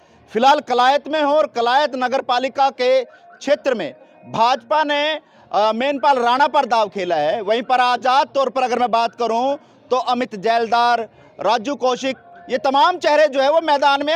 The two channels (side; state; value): both; identical; correlation 1.00